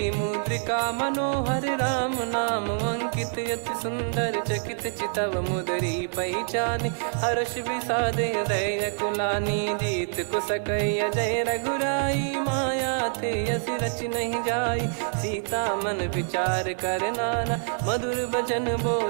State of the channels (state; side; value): silent; left; 61 dB below the other